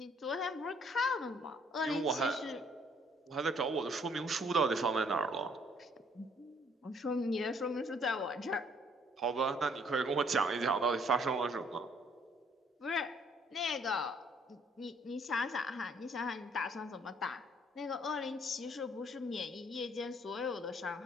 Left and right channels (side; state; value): both; normal; correlation 0.64